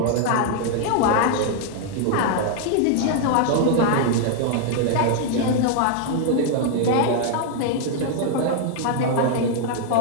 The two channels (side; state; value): both; different; correlation 0.00